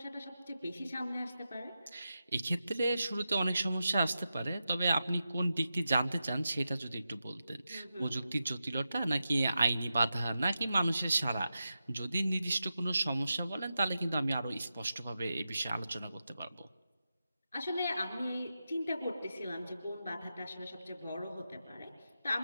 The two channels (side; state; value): both; inverted; correlation -0.90